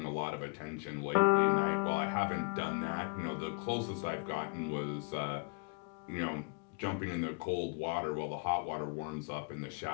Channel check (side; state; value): right; quieter; 37.0 dB